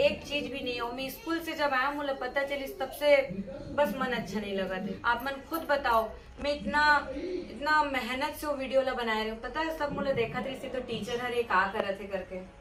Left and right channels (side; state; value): both; identical; correlation 1.00